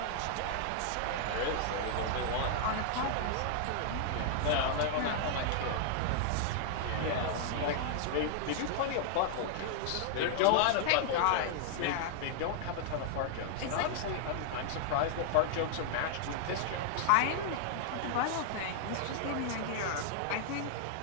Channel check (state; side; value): different; both; correlation -0.01